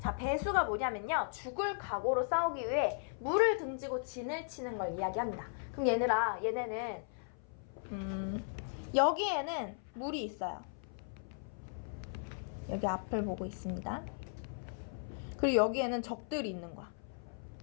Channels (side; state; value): right; silent; 53 dB below the other